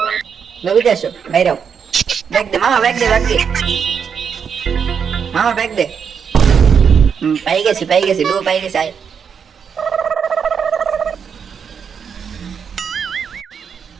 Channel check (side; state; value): left; quieter; 6.9 dB